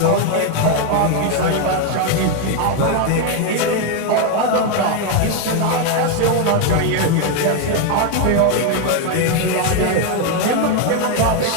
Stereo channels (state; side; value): different; both; correlation 0.01